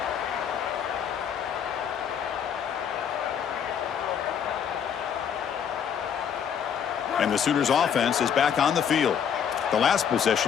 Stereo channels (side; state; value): right; quieter; 8.0 dB